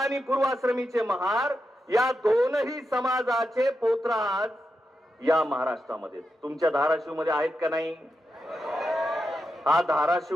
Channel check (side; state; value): both; normal; correlation 0.87